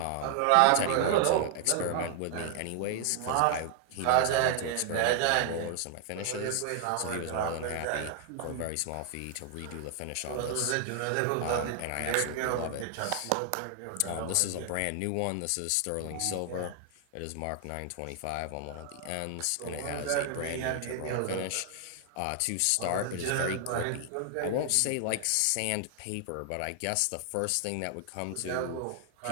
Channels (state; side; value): different; both; correlation 0.00